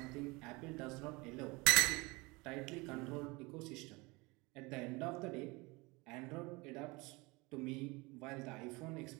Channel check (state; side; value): quieter; left; 24.9 dB